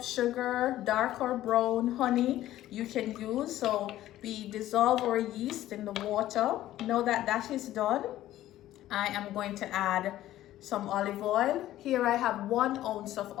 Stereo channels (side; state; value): right; quieter; 14.0 dB